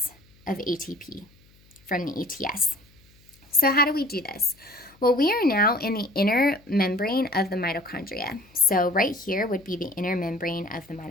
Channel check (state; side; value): noise; left; hum, 29 dB below the sound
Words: of ATP from the ETS. So how do we do this? Well, we are now in the inner membrane of the mitochondria. So right here would be the inner membrane of the